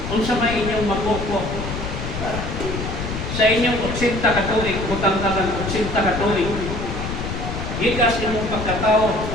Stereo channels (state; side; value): noise; left; rumble, 5 dB below the sound